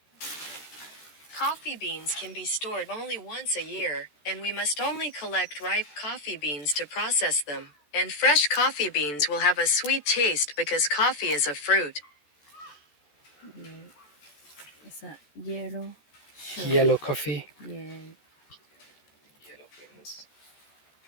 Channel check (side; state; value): right; late; 13 ms